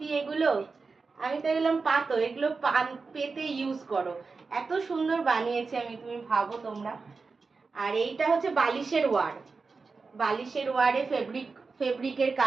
এগুলো। আমি তো এগুলো পাতো, এগুলো পেতে ইউজ করো। এত সুন্দর বানিয়েছি আমি, তুমি ভাবো তোমরা। আর এইটা হচ্ছে বালিশের ওয়ার, বালিশের ওয়ারে ফেব্রিকের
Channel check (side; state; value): left; quieter; 4.4 dB